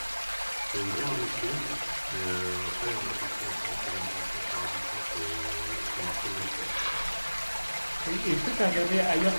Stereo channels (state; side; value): inverted; both; correlation -1.00